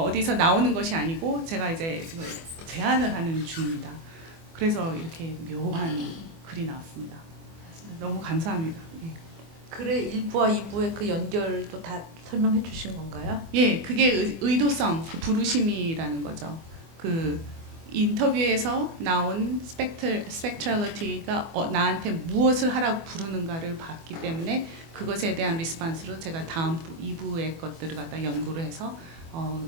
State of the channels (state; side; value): late; left; 24 ms